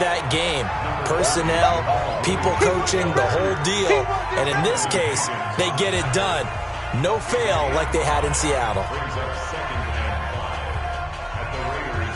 game. Personnel, people coaching, the whole deal. And in this case, they get it done. No fail like they had in Seattle.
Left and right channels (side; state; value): both; identical; correlation 1.00